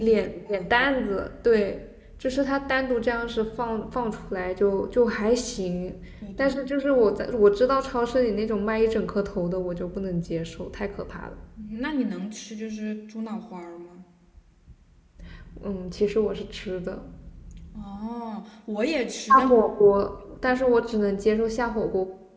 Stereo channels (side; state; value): both; identical; correlation 1.00